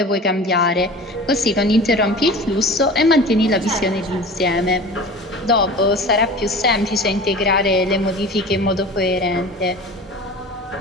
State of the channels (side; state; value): both; normal; correlation 0.37